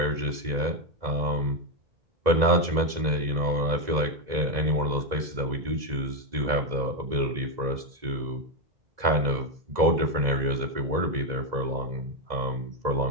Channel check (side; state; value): left; late; 2.0 ms